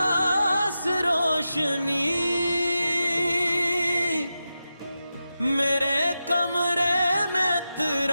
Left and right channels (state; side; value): inverted; both; correlation -0.90